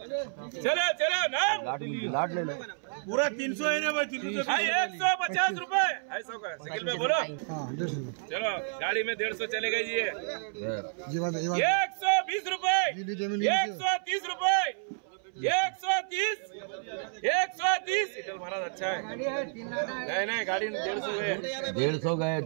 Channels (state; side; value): silent; left; 58 dB below the other